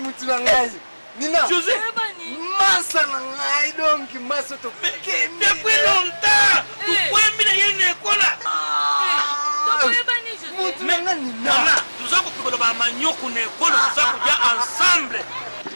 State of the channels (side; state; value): both; inverted; correlation -1.00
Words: ngai nina José masa na ngai donc masa to depuis longtemps tukwembi na yene ekola Nana, tuza kupikola ba manyoko na ekolo tuza kuja ensemble.